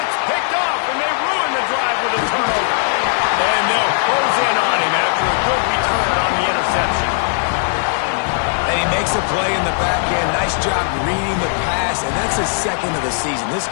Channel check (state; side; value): silent; right; digital silence